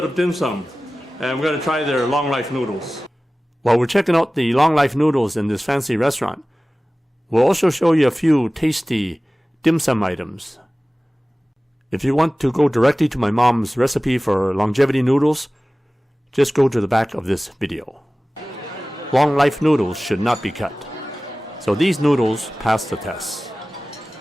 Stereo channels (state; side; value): normal; both; correlation 0.97